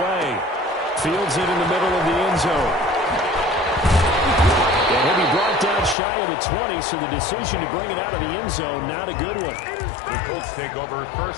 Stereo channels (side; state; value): right; drops out; at 6.0 s